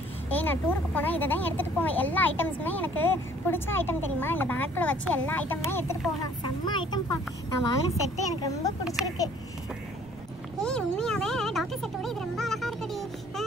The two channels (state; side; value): noise; right; rumble, 21 dB below the sound